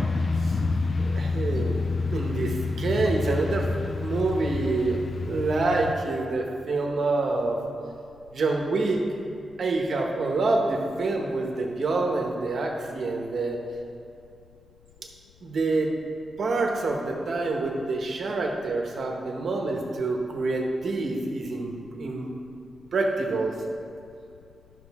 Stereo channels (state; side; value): noise; left; rumble, 27 dB below the sound